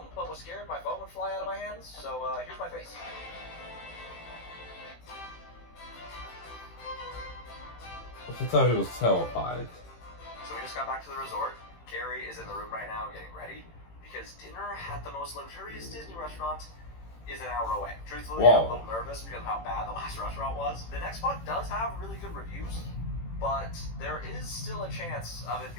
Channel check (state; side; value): late; right; 18 ms